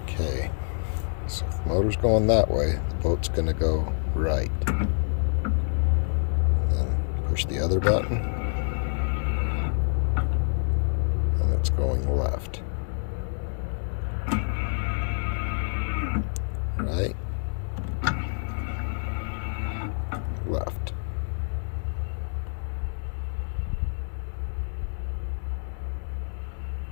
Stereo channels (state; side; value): silent; right; 56 dB below the other